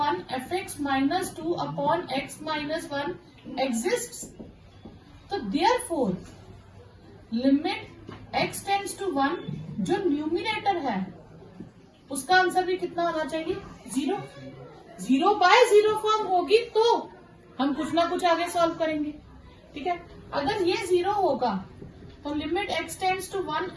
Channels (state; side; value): identical; both; correlation 1.00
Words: fx minus 2 upon x minus 1 exists, तो therefore limit x tends to 1 जो न्यूमिनेटर है उसका आंसर भी कितना होना चाहिए, 0। 0 बाय 0 फॉर्म होगी तो हम कुछ ना कुछ आगे सॉल्व करेंगे, ठीक है। अगर ये 0 होगा तो limit x tends to 1